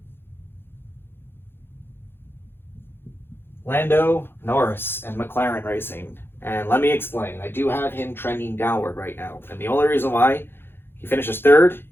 Lando, Norris, and McLaren Racing. And let me explain. I do have him trending downward right now. And the only reason why, he finishes 3rd,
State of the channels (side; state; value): right; late; 0.11 ms